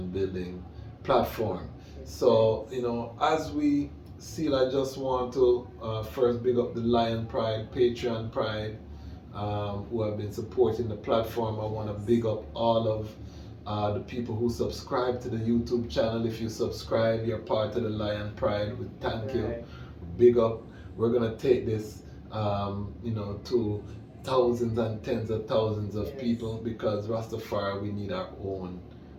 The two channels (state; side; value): identical; both; correlation 1.00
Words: building platform. So, as we seal, I just want to first big up the Lion Pride, Patreon Pride, who have been supporting the platform. I want to big up all of the people who subscribe to the YouTube channel. If you subscribe, you're part of the Lion Pride. Thank you. Big up. We're going to take this, to thousands and tens of thousands of people, because Rastafari, we need our own